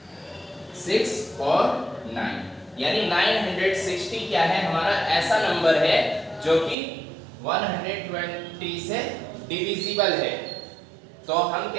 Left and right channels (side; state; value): left; drops out; at 6.8 s